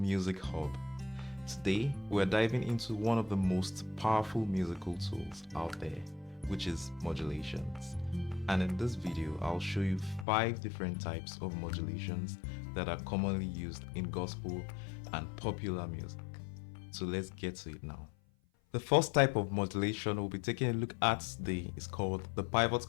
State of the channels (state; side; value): drops out; right; at 10.2 s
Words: Hub. Today, we're diving into one of the most powerful musical tools out there, which is modulations. And in this video, I'll show you 5 different types of modulations that are commonly used in gospel and popular music. So let's get to it now. The first type of modulation we'll be taking a look at today is called the pivot